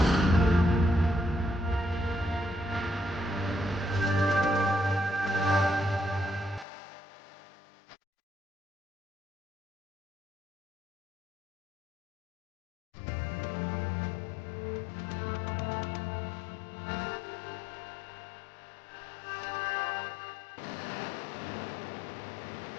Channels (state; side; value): drops out; right; at 6.7 s